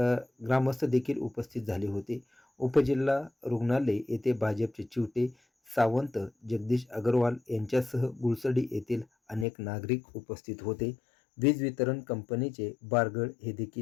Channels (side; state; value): right; drops out; at 9.5 s